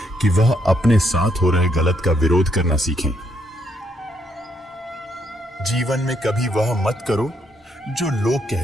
कि वह अपने साथ हो रहे गलत का विरोध करना सीखें। जीवन में कभी वह मत करो जो लोग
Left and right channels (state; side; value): normal; both; correlation 0.75